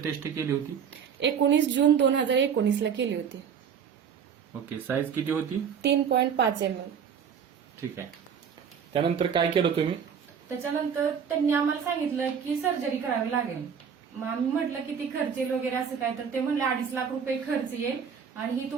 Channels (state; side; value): quieter; left; 7.3 dB